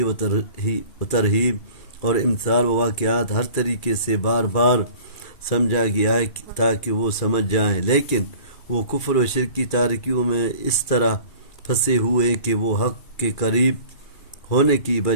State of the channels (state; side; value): late; right; 2.4 ms